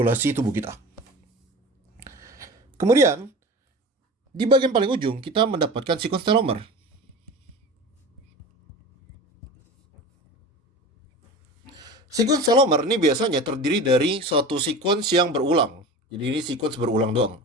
tubuh kita. Kemudian, di bagian paling ujung kita mendapatkan sequence telomer. Sequence telomer ini biasanya terdiri dari suatu sequence yang berulang. Jadi ini sequence berulang doang.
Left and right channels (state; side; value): normal; both; correlation 0.34